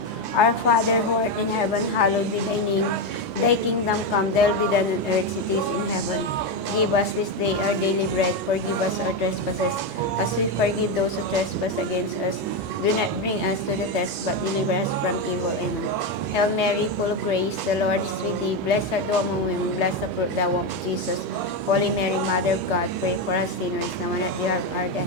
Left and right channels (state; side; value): normal; both; correlation 0.10